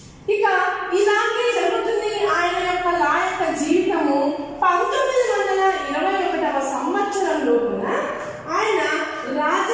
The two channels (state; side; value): identical; both; correlation 1.00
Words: ఇక ఇలాగే జరుగుతుంది ఆయన యొక్క లాయర్ జీవితము. 1921వ సంవత్సరంలో కూడా ఆయన